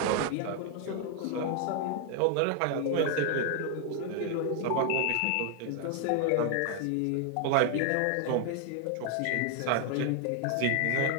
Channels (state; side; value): different; both; correlation 0.00